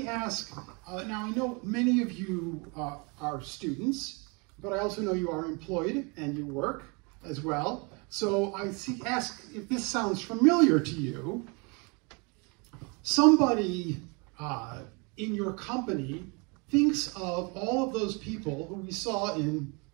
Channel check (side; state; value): left; quieter; 31.2 dB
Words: ask, now I know many of you are students, but I also know you are employed and you work as well. So ask if this sounds familiar to you. Somebody in your company thinks of all of those people who we saw in